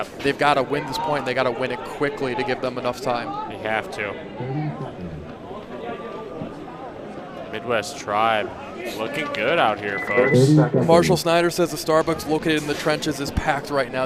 they've got to win this point. And they got to win it quickly to give them enough time. They have to. Midwest Tribe looking good out here, folks. Marshall Snyder says the Starbucks located in the trenches is packed right now.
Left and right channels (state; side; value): identical; both; correlation 1.00